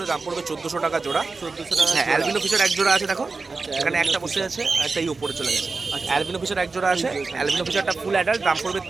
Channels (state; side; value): quieter; left; 4.0 dB